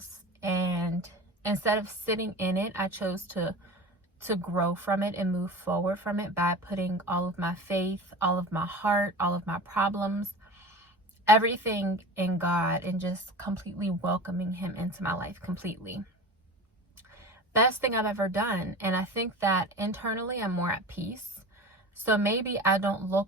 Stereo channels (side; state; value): both; normal; correlation 0.33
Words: and instead of sitting in it, I chose to grow from it and move forward from it by putting all of my faith, all of my heart, all of my problems, everything in God, and just completely welcoming him into my life completely. Best thing I've ever done. And I think that internally I'm more at peace. So maybe I don't